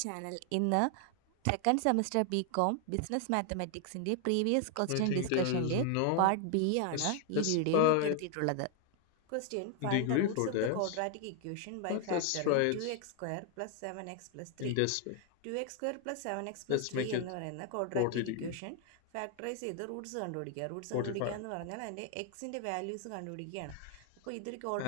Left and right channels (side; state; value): both; different; correlation 0.00